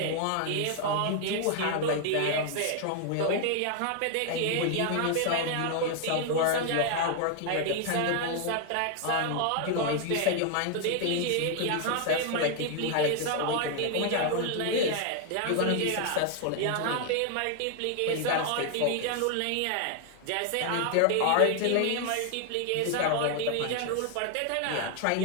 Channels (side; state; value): both; different; correlation 0.00